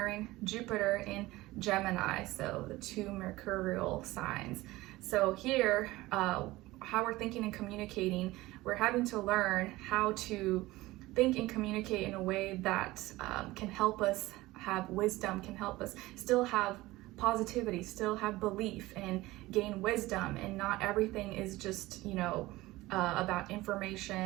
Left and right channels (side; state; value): left; quieter; 18.9 dB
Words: Jupiter in Gemini, so the two mercurial signs. So here, how we're thinking and communicating, we're having to learn how to think and communicate in a way that can help us have wisdom, can help us still have positivity, still have belief, and gain wisdom, and not everything is just, about information